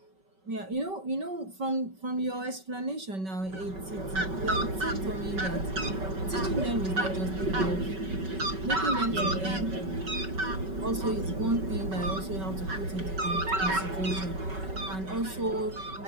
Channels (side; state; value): left; late; 5.3 ms